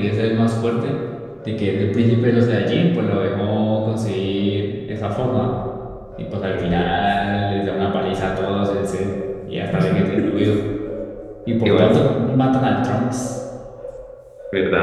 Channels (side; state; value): both; identical; correlation 1.00